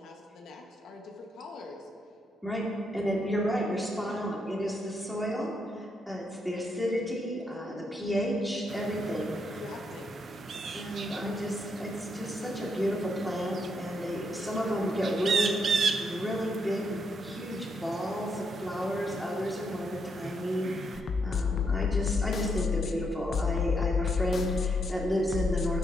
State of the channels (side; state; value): both; normal; correlation 0.78